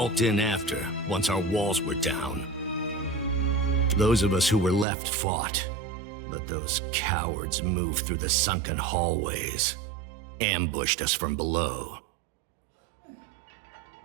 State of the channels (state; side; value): drops out; left; at 4.9 s